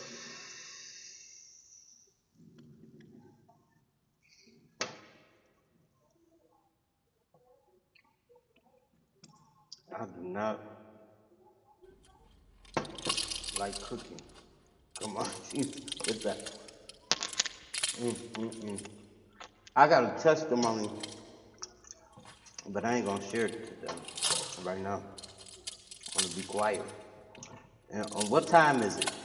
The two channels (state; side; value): identical; both; correlation 1.00